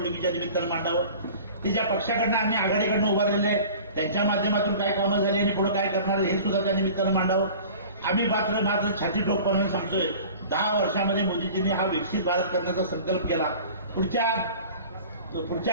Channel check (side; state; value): both; inverted; correlation -0.42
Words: निमित्तानं मांडावं. ते ज्या पक्षाकडनं आम्ही आघाडीकडनं उभारलेले आहेत त्यांच्या माध्यमातून काय कामं झाली आणि पुढे काय करणार हे सुद्धा त्या निमित्तानं मांडावं. आम्ही मात्र छाती ठोकपणे सांगतोय, 10 वर्षामध्ये मोदीजींनी हा विकसित भारत करण्याचा संकल्प केला.